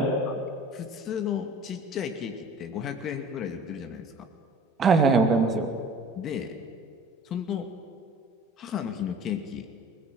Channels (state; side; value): normal; both; correlation 0.45